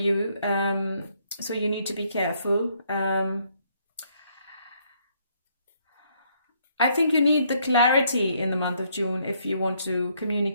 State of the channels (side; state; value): both; inverted; correlation -0.70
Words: so you need to be careful. I think you need the clarity in the month of June if you want to